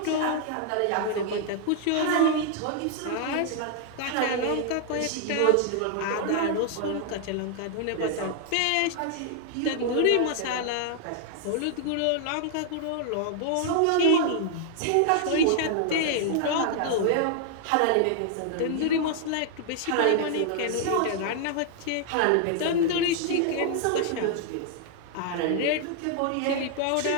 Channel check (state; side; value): different; both; correlation 0.00